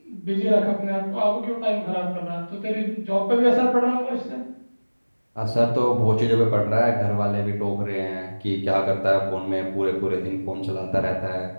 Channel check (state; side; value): inverted; both; correlation -1.00